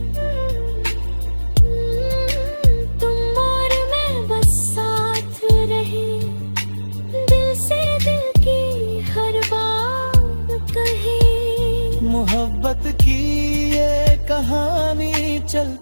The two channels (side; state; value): both; inverted; correlation -1.00